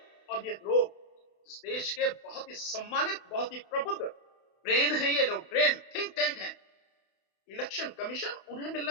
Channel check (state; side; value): late; right; 32 ms